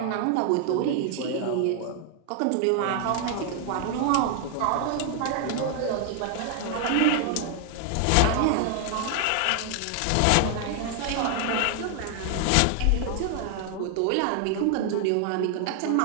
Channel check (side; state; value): both; different; correlation 0.00